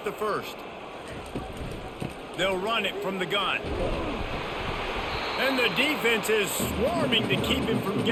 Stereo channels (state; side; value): identical; both; correlation 1.00